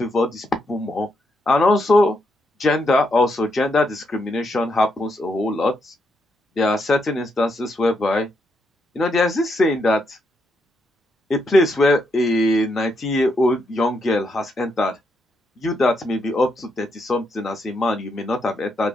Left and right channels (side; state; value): both; normal; correlation 0.79